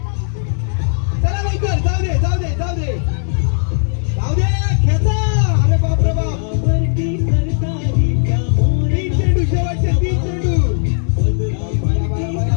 चला लवकर, जाऊ दे जाऊ दे जाऊ दे जाऊ दे, खेचा. अरे बाप रे बाप, 3 चेंडू, शेवटचे 3 चेंडू. बया, बया, बया,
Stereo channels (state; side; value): silent; right; digital silence